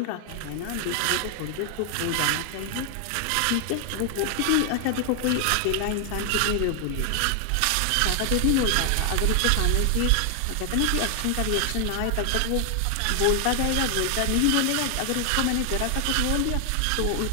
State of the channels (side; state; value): both; different; correlation 0.00